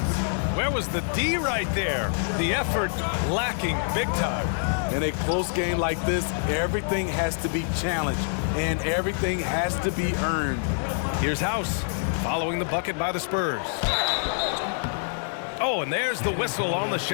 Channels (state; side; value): silent; right; 61 dB below the other